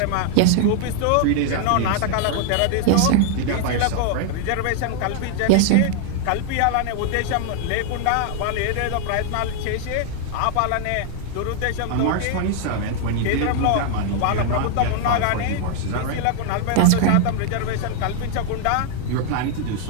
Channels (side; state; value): both; different; correlation 0.00